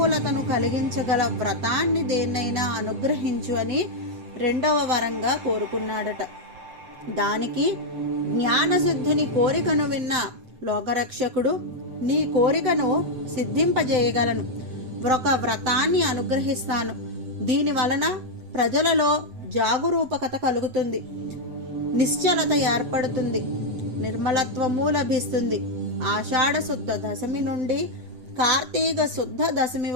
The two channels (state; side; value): late; left; 7.9 ms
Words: కలిగించగల వ్రతాన్ని దేన్నైనా అనుగ్రహించు అని 2వ వరంగా కోరుకున్నాడట. దానికి జ్ఞానసిద్ధుని కోరికను విన్న లోకరక్షకుడు, నీ కోరికను సిద్ధింపజేయగలను, ఒక వ్రతాన్ని అనుగ్రహిస్తాను. దీని వలన ప్రజలలో జాగరూకత కలుగుతుంది, నిశ్చలత ఏర్పడుతుంది, నిర్మలత్వము లభిస్తుంది. ఆషాఢ శుద్ధ దశమి నుండి కార్తీక శుద్ధ దశమి